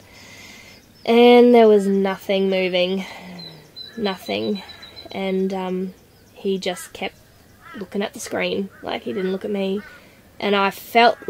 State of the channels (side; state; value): both; identical; correlation 1.00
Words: And there was nothing moving. Nothing. And he just kept looking at the screen, like he didn't look at me. And I felt